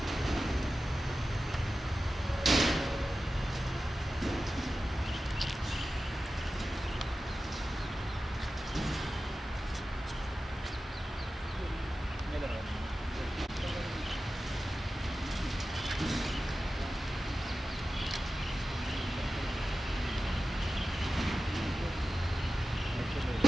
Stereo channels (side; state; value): both; normal; correlation 0.94